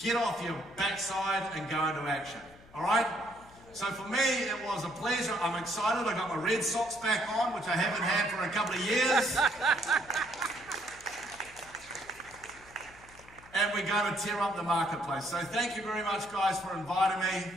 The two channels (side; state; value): left; noise; hum, 23 dB below the sound